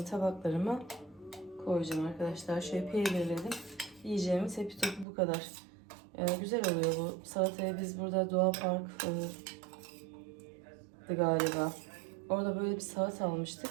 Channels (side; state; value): left; drops out; at 5.1 s